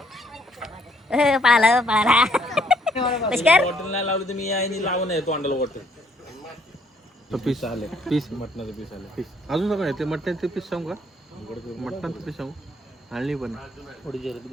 पळाला पळाला पुष्कर बॉटल नाही लावलं तर मी यायनी लावून आहे तोंडाला बॉटल. पीस आले, पीस मटणाचं पीस आले, पीस अजून काय ते मटणाचे पीस सांगू का? मटणाचं पीस सांगू आणली पण थोडी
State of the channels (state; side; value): normal; both; correlation 0.67